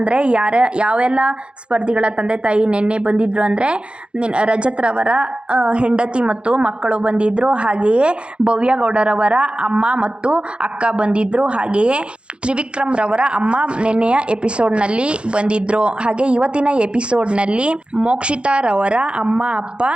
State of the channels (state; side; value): late; left; 0.056 ms